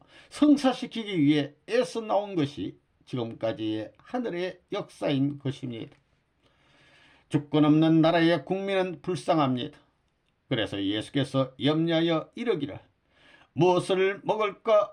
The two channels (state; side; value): identical; both; correlation 1.00